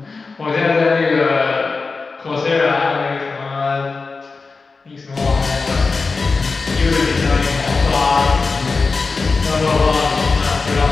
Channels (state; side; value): quieter; right; 4.2 dB